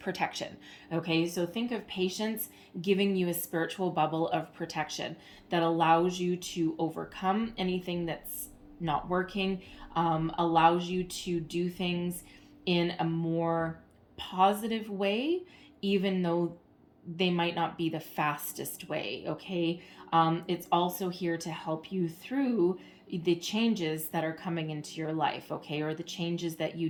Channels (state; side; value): identical; both; correlation 1.00